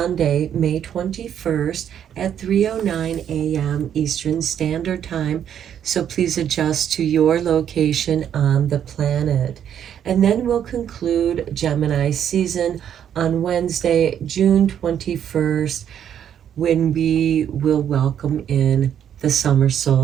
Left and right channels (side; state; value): left; quieter; 9.3 dB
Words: May 21st at 3:09 a.m. Eastern Standard Time. So please adjust to your location on the planet. And then we'll conclude Gemini season on Wednesday, June 21st, when we will welcome in the summer